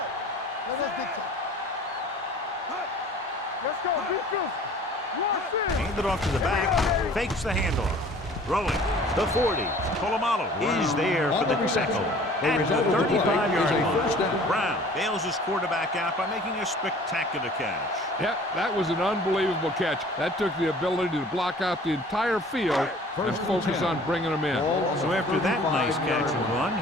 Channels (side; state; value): both; normal; correlation 0.49